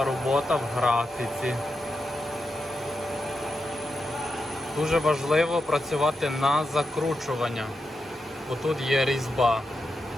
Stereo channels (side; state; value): both; normal; correlation 0.87